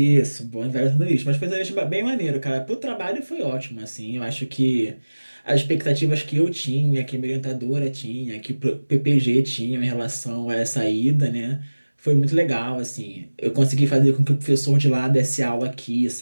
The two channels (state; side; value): inverted; both; correlation -1.00